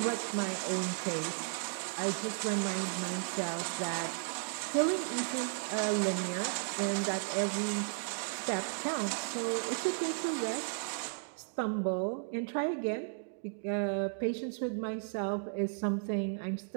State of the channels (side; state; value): left; silent; digital silence